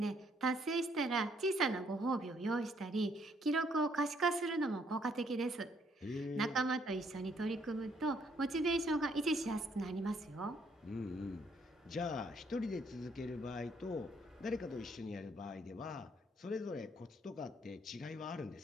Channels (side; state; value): both; normal; correlation 0.68